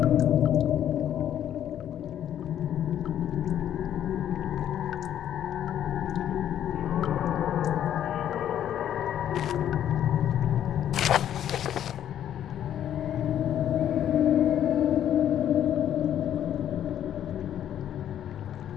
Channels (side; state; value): right; quieter; 10.6 dB